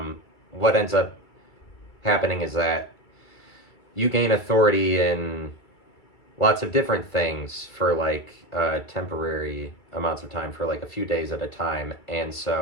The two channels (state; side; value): late; right; 2.3 ms